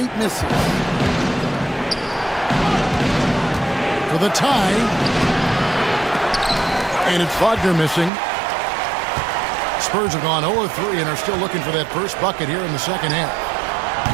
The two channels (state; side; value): drops out; left; at 8.1 s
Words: misses. For the tie, and it's Wagner missing. Spurs have gone 0-3 and are still looking for that first bucket here in the second half.